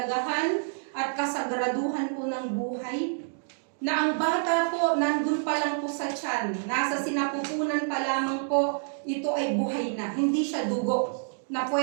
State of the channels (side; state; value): left; silent; digital silence